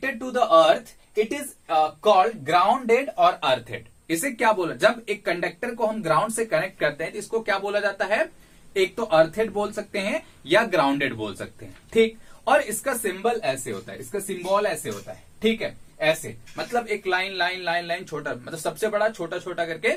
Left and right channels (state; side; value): identical; both; correlation 1.00